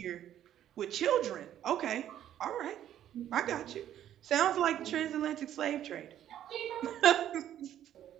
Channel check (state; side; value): quieter; left; 11.2 dB